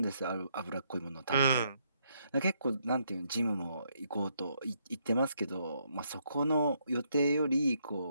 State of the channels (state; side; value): inverted; both; correlation -0.74